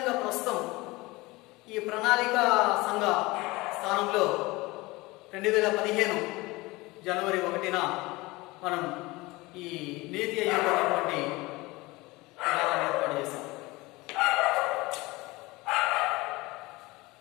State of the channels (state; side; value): quieter; right; 21.9 dB